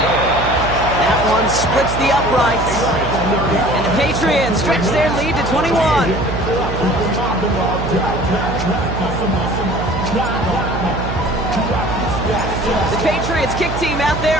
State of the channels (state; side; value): noise; right; hum, 6 dB below the sound